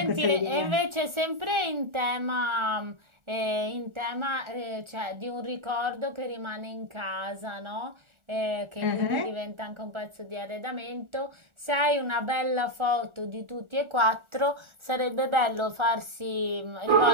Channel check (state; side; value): late; left; 1.4 ms